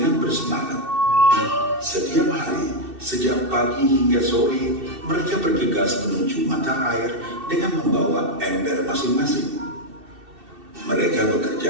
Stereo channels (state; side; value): late; left; 2.7 ms